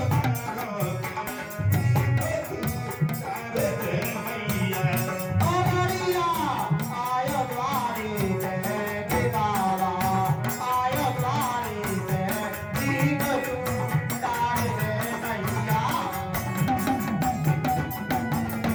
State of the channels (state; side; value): identical; both; correlation 1.00